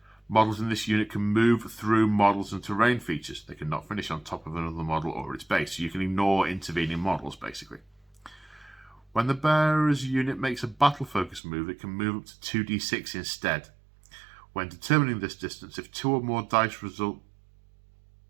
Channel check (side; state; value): left; drops out; at 11.4 s